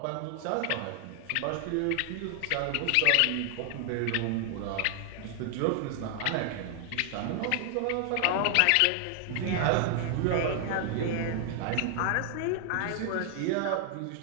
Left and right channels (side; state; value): both; different; correlation 0.00